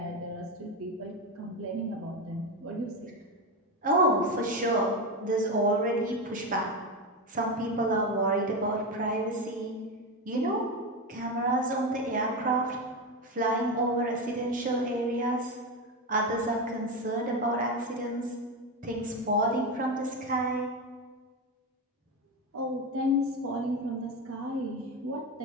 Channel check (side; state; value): both; normal; correlation 0.15